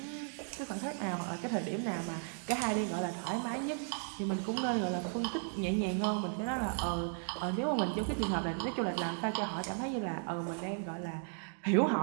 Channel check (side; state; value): left; silent; 54 dB below the other